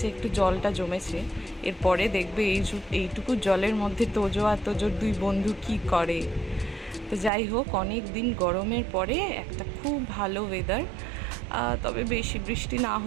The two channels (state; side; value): drops out; left; at 7.3 s